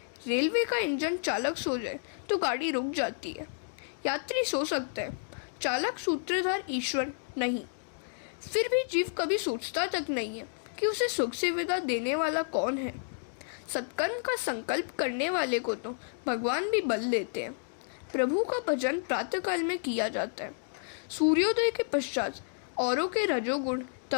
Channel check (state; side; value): silent; right; digital silence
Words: रेलवे का इंजन चालक सो जाए तो गाड़ी रुक जाती है। यात्री सो सकता है, चालक सूत्रधार ईश्वर नहीं। फिर भी जीव कभी सोचता तक नहीं है कि उसे सुख सुविधा देने वाला कौन है। सत्कर्म का संकल्प करने वाले को तो भगवान भी बल देते हैं। प्रभु का भजन प्रातःकाल में किया जाता है। सूर्योदय के पश्चात औरों के रजोगुण